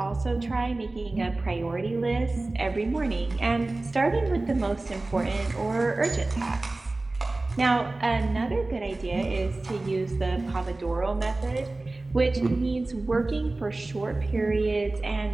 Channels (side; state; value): left; quieter; 3.0 dB